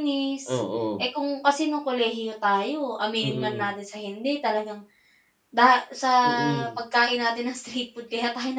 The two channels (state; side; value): identical; both; correlation 1.00